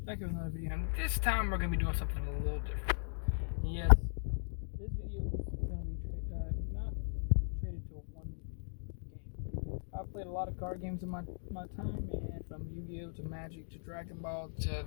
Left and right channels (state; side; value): silent; right; digital silence